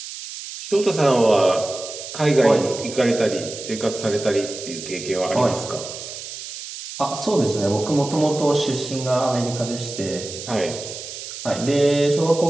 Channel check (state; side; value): noise; right; hiss, 10 dB below the sound